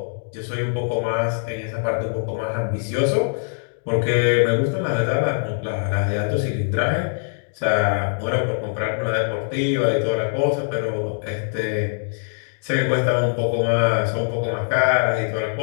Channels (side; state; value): right; silent; digital silence